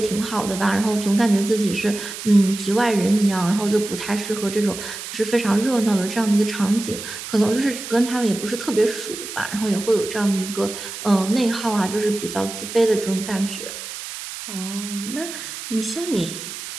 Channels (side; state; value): right; noise; hiss, 9 dB below the sound